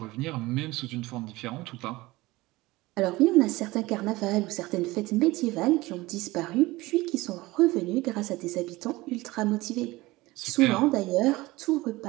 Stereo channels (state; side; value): quieter; left; 20.0 dB